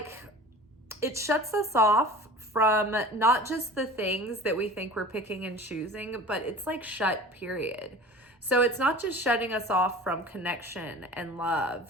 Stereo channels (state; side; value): normal; both; correlation 0.39